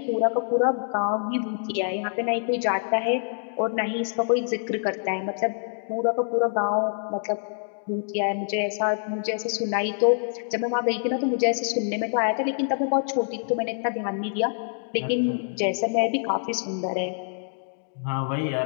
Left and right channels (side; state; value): right; silent; digital silence